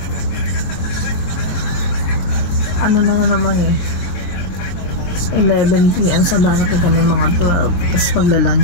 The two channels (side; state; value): right; late; 22 ms